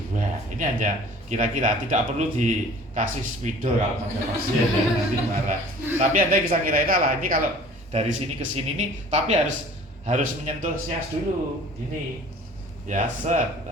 Ini hanya kira-kira, tidak perlu dikasih spidol kalau sampai pasien ya, nanti marah. Tapi Anda bisa kira-kira lah, ini kalau dari sini ke sini nih, tapi harus menyentuh sias dulu, ini ya set.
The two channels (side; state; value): both; normal; correlation 0.48